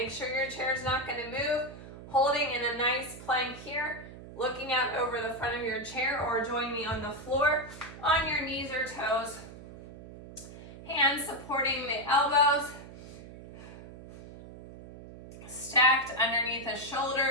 sure your chair is not going to move. Holding in a nice plank here, looking out over the front of your chair, or join me on the floor on your knees or toes. Hands supporting the elbows. Stacked underneath the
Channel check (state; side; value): noise; right; hum, 15 dB below the sound